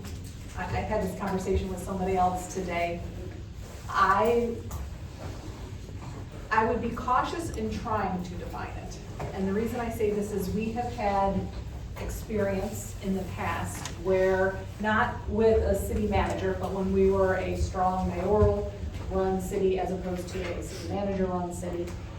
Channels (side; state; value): both; identical; correlation 1.00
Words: I had this conversation with somebody else today. I would be cautious in trying to define it. And the reason I say this is we have had experience in the past where, not with a city manager, but when we were a strong mayoral run city as opposed to a city manager run city,